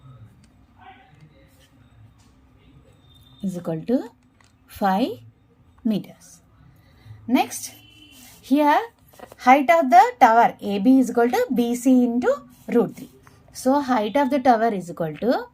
is equal to 5 meters. Next, here height of the tower AB is equal to BC into root 3. So height of the tower is equal to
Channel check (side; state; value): both; identical; correlation 1.00